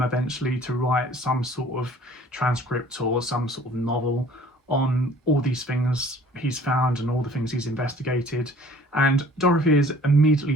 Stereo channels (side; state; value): both; normal; correlation 0.52